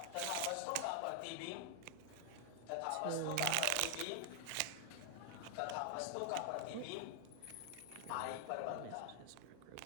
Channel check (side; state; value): both; different; correlation 0.00